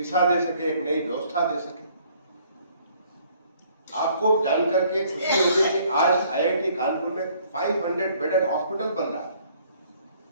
दे सके, एक नई व्यवस्था दे सके। आपको जानकर के खुशी होगी कि आज आईआईटी कानपुर में 500 बेडेड हॉस्पिटल बन रहा है,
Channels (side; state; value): both; inverted; correlation -0.61